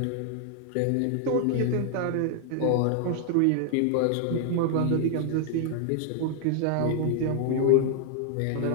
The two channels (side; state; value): both; different; correlation 0.00